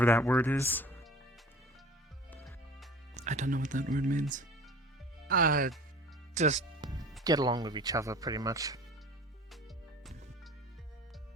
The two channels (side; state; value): both; normal; correlation 0.43